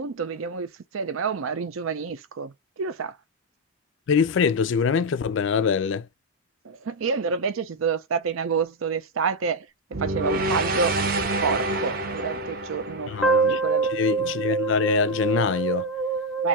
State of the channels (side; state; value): both; normal; correlation 0.01